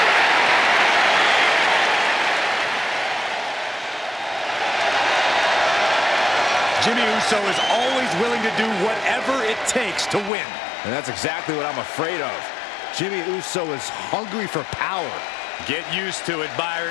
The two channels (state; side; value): drops out; right; at 10.3 s